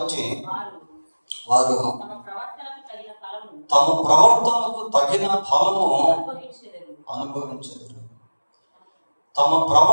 వారు తమ ప్రవర్తనకు తగిన ఫలము అనుభవించెదరు. తమ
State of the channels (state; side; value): inverted; both; correlation -1.00